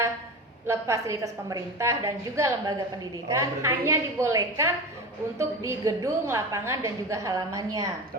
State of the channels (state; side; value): normal; both; correlation 0.27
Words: fasilitas pemerintah dan juga lembaga pendidikan Oh, berarti- hanya dibolehkan untuk di gedung, lapangan dan juga halamannya.